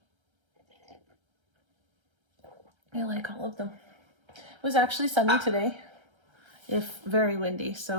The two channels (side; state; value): left; late; 1.3 ms